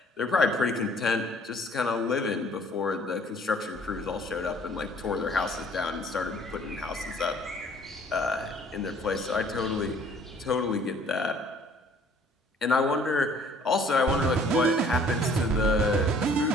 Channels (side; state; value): both; normal; correlation 0.57